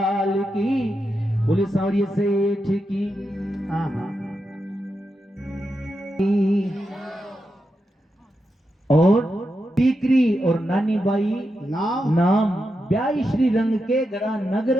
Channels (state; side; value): normal; both; correlation 0.87